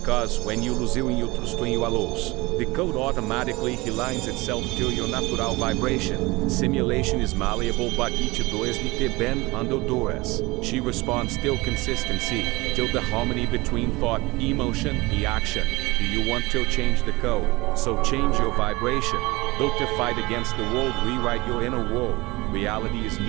when you lose you trust in your loss, the code automatically aligns itself to your natural vibration. Simulation is malleable, but each does need to bend under duress. She responds till consistency, till the harmony between thought, emotion, and action. Do you want to change the code? So change your vibration. Don't fight against the world, rewrite your inner world. Reality is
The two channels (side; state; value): left; quieter; 22.4 dB